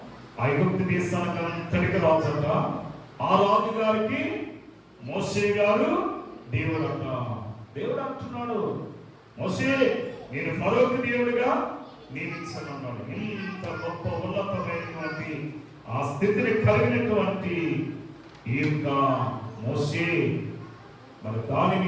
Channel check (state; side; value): identical; both; correlation 1.00